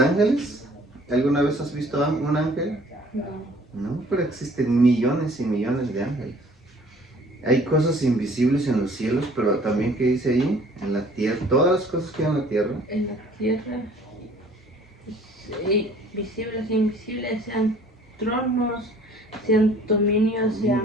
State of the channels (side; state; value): both; normal; correlation 0.54